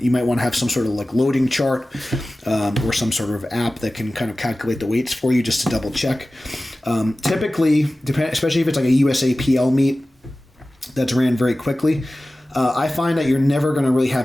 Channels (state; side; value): normal; both; correlation 0.96